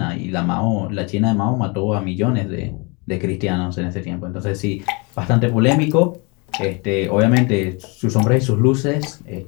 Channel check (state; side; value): quieter; right; 30.4 dB